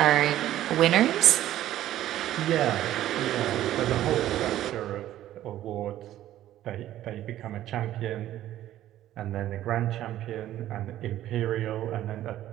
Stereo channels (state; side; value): quieter; left; 13.1 dB